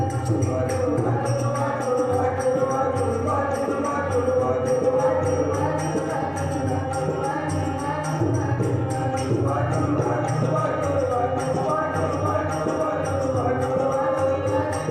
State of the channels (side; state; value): both; identical; correlation 1.00